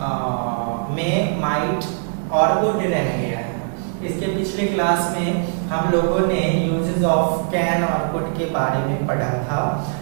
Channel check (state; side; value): silent; left; digital silence